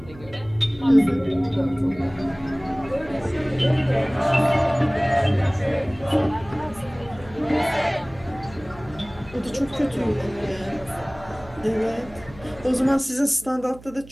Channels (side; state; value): right; noise; hum, 20 dB below the sound